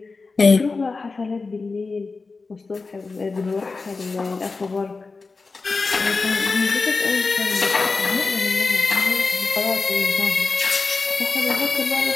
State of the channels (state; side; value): quieter; right; 4.1 dB